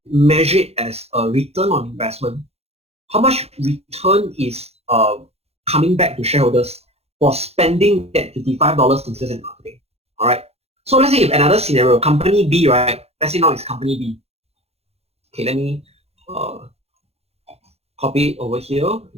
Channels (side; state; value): left; late; 0.30 ms